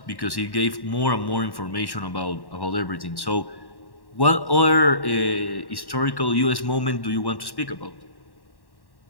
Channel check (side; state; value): right; late; 1.1 ms